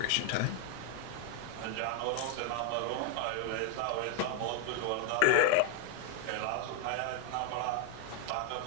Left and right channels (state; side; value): different; both; correlation 0.00